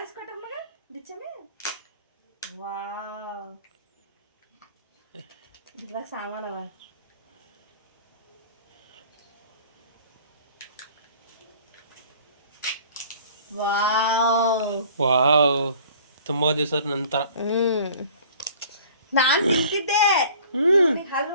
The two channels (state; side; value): inverted; both; correlation -0.50